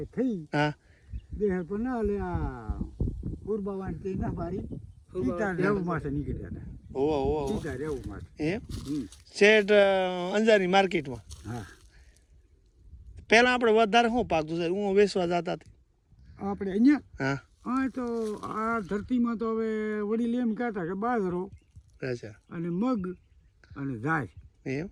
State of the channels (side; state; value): both; identical; correlation 1.00